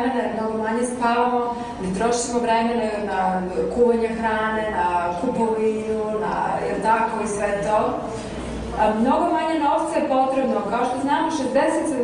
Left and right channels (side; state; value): both; identical; correlation 1.00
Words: mnogo manje spavamo, ne trošimo vremena na kuvanje hrane, na kupovinu, na tako i sve to. Mnogo manje novca je potrebno, kao što znamo 60-70%